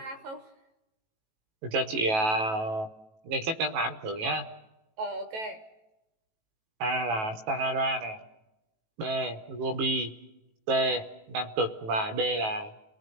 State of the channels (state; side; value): late; left; 18 ms